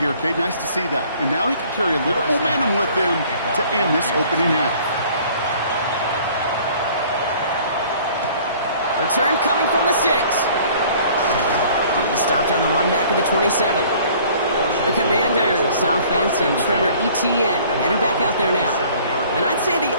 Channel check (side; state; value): both; inverted; correlation -0.53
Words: Kate. Nice to see that. And now he can carry a little momentum with him to end this opening half. Return coming from the 6. He stopped on the run back of the 27. The Commanders, offense, and Trevor Etienne headed back out there now. And I'd say the